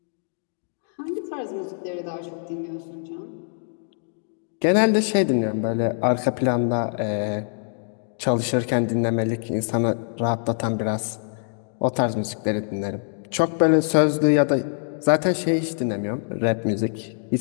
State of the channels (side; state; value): right; silent; digital silence